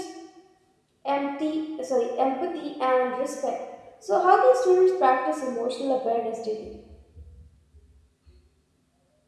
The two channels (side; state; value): both; identical; correlation 1.00